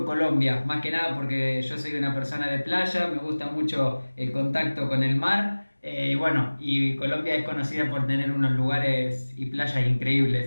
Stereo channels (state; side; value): inverted; both; correlation -1.00